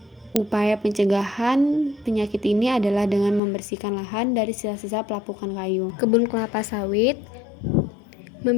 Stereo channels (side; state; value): right; drops out; at 3.4 s